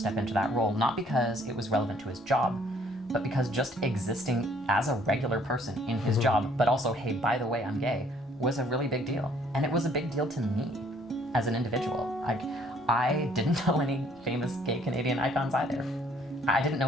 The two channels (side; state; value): both; normal; correlation 0.62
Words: into that role, not because it was relevant to his job, but because just existing as a regular person in his job, but also, hey, by the way, I'm gay, was a really big deal. And it was a big deal to me as an individual. I didn't know any famous gay Canadian icons either. I didn't